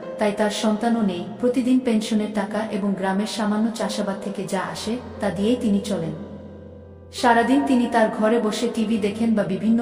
তাই তার সন্তানও নেই। প্রতিদিন পেনশনের টাকা এবং গ্রামের সামান্য চাষাবাদ থেকে যা আসে তা দিয়েই তিনি চলেন। সারাদিন তিনি তার ঘরে বসে টিভি দেখেন বা বিভিন্ন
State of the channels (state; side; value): identical; both; correlation 1.00